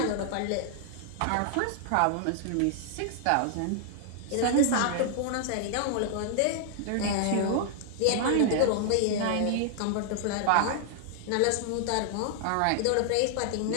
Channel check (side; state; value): both; different; correlation 0.00